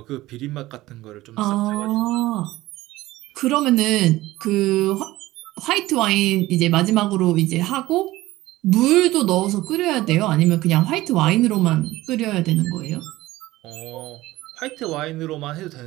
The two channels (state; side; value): quieter; left; 17.4 dB